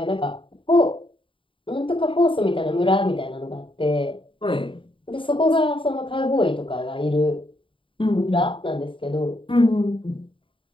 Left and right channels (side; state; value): right; late; 0.25 ms